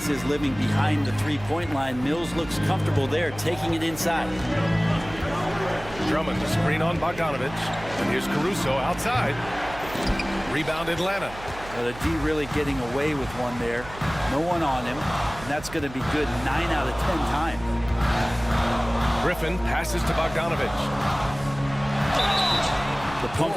his living behind the three-point line, Mills looks comfortable there, taking it inside. Drummond, the screen on Bogdanovich. And here's Caruso outside. Rebound Atlanta. Well, the D really getting away with one there. No one on him. And that's going to be good 9 out of 10 times. Griffin passes to Bogdanovich. The pump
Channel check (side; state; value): right; noise; hum, 15 dB below the sound